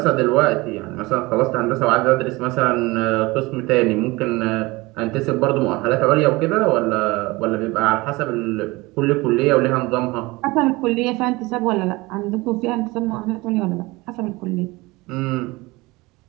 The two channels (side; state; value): left; quieter; 22.4 dB